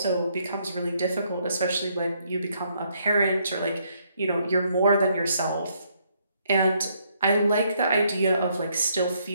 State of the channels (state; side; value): inverted; both; correlation -0.71